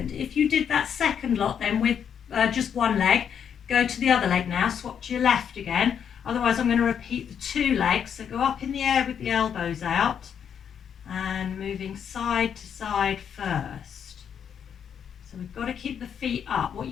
If you did that second lot then with just one leg, go to the other leg now, swap to your left again. Otherwise I'm going to repeat the 2 legs, so go up in the air with the elbows out, and moving side to side first. So we've got to keep the feet up. What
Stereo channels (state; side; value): quieter; right; 8.0 dB